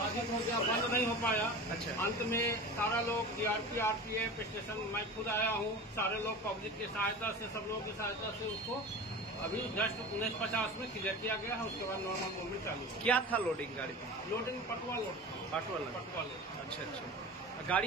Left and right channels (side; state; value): both; normal; correlation 0.33